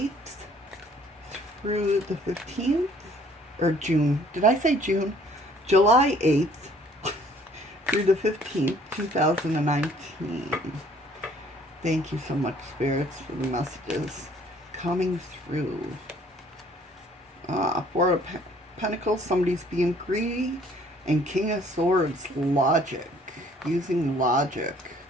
through the 15th? Or June. Did I say June? July 8th through the 15th, 2019. Thank you so much, spirits, for the messages coming through. Four of Pentacles, somebody's being greedy. And King of Swords, logic. Using logic.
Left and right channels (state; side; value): normal; both; correlation 0.59